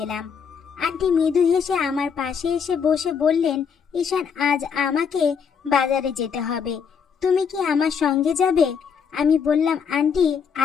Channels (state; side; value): quieter; right; 6.6 dB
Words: এলাম। আন্টি মৃদু হেসে আমার পাশে এসে বসে বললেন, ঈশান, আজ আমাকে বাজারে যেতে হবে, তুমি কি আমার সঙ্গে যাবে? আমি বললাম, আন্টি,